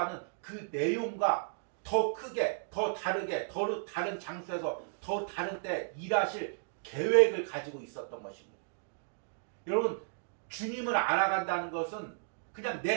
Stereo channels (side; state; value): left; silent; digital silence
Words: 그 내용과 더 크게, 더 다르게, 더 다른 장소에서 더 다른 때 일하실 계획을 가지고 있었던 것입니다. 여러분, 주님을 알아간다는 것은 그냥